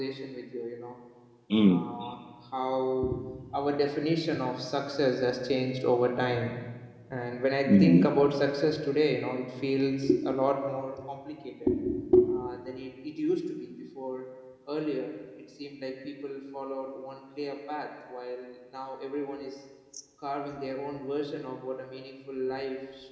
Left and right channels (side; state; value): both; identical; correlation 1.00